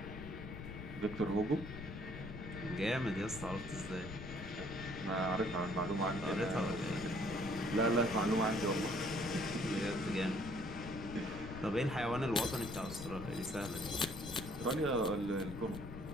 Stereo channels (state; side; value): noise; left; rumble, 10 dB below the sound